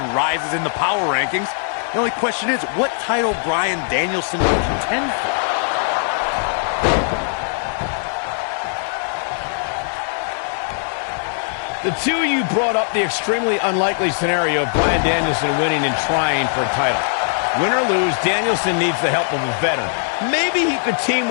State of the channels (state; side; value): silent; right; digital silence